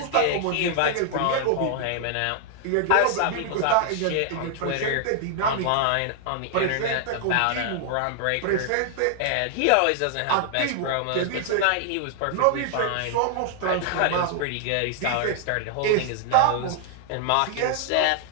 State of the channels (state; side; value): different; both; correlation 0.00